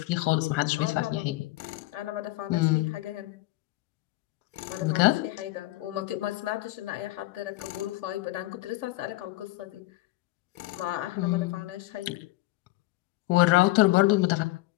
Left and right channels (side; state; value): right; quieter; 18.8 dB